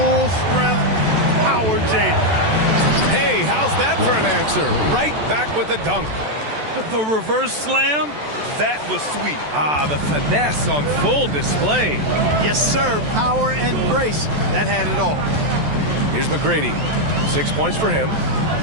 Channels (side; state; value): left; late; 14 ms